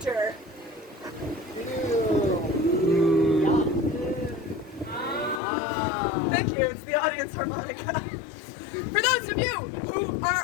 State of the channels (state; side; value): drops out; right; at 5.4 s